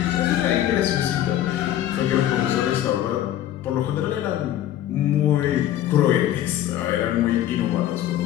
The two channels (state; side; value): quieter; right; 12.1 dB